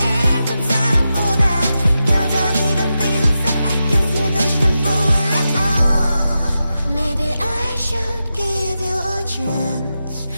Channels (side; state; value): both; inverted; correlation -0.90